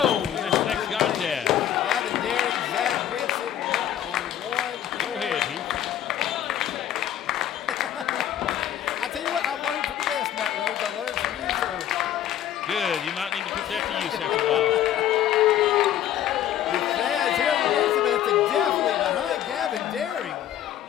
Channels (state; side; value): quieter; right; 11.2 dB